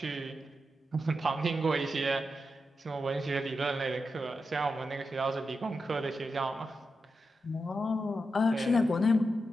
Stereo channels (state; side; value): normal; both; correlation 0.88